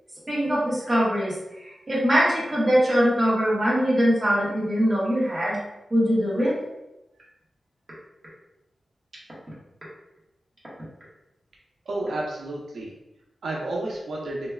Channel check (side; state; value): both; normal; correlation 0.94